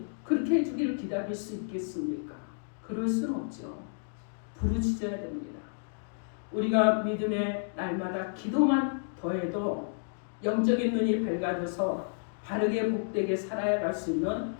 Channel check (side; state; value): right; silent; digital silence